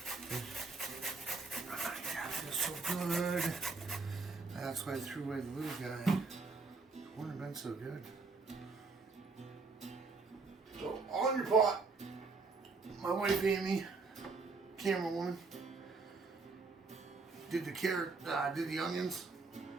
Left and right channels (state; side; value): quieter; left; 4.1 dB